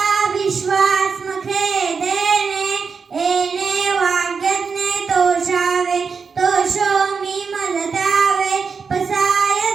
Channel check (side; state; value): left; quieter; 5.4 dB